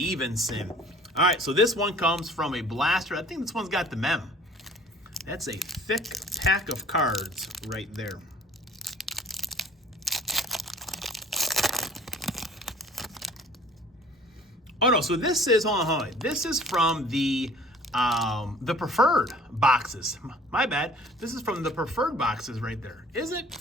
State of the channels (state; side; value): normal; both; correlation 0.51